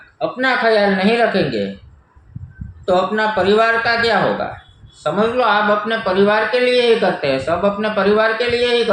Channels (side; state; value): both; identical; correlation 1.00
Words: अपना ख्याल नहीं रखेंगे तो अपना परिवार का क्या होगा? समझ लो, आप अपने परिवार के लिए ही करते हैं, सब अपने परिवार के लिए ही